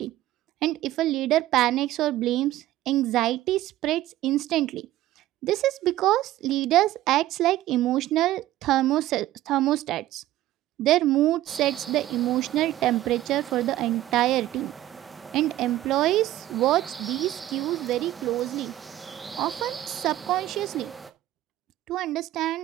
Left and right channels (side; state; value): left; quieter; 14.7 dB